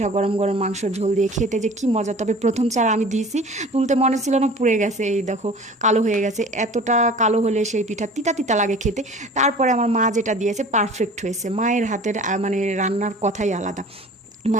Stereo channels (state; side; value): normal; both; correlation 0.43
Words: গরম গরম মাংসর ঝোল দিয়ে খেতে যে কি মজা। তবে প্রথম চার আমি দিয়েছি, তুলতে মনে ছিল না, পুড়ে গেছে। এই দেখো কালো হয়ে গেছে। এতটা কালো হলে সেই পিঠা তিতা তিতা লাগে খেতে। তারপরে আমার মা যেটা দিয়েছে পারফেক্ট হয়েছে। মায়ের হাতের মানে রান্নার কথাই আলাদা,